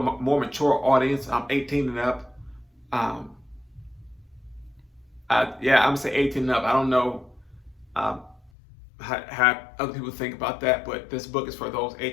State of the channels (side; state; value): right; drops out; at 8.5 s